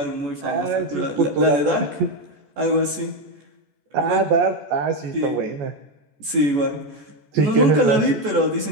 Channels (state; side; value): late; left; 14 ms